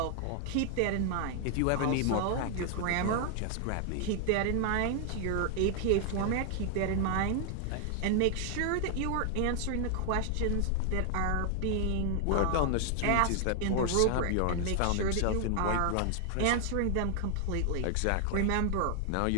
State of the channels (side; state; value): both; different; correlation 0.00